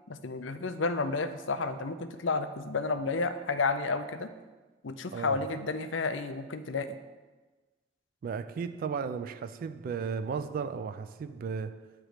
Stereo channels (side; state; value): both; normal; correlation -0.19